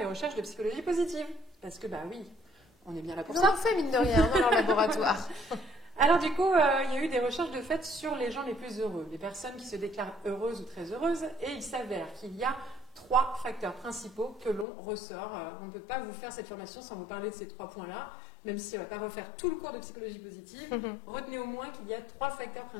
recherches de psychologie positive. Parce que, oui, on est bien là pour ça. On en fait, mine de rien, dans leur laboratoire. Alors du coup, il y a eu des recherches de fait sur les gens les plus heureux, les personnes qui se déclarent heureuses ou très heureuses, et il s'avère qu'il y a 3 facteurs principaux que l'on ressort. On ne peut pas vous faire cette formation sans vous parler de ces 3 points-là, même si on ne va pas refaire tout le cours de psychologie positive. Retenez au moins qu'il y a 3 facteurs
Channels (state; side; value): drops out; right; at 14.7 s